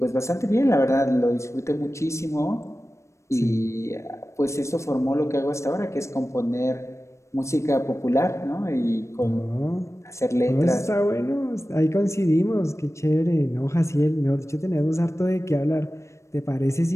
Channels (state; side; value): late; right; 0.14 ms